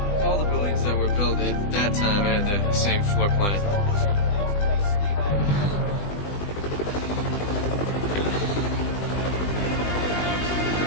All the buildings that were built at that time had the same floor plan.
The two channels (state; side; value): late; right; 20 ms